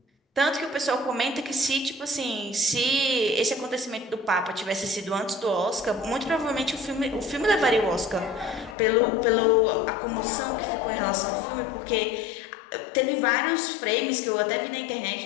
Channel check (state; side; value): drops out; right; at 8.8 s